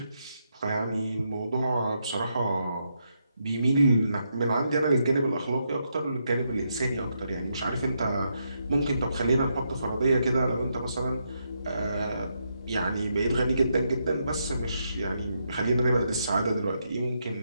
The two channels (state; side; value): inverted; both; correlation -0.80